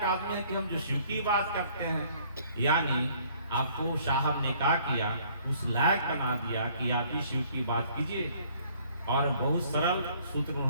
आदमी है कि हम जो शिव की बात करते हैं। यानी आपको साहब ने क्या किया, उस लायक बना दिया कि आप ही शिव की बात कीजिए। और बहुत सरल सूत्र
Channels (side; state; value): both; inverted; correlation -0.60